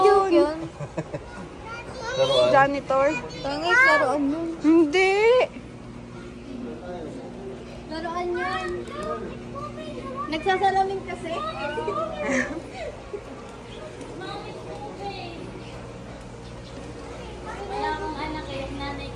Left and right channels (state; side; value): identical; both; correlation 1.00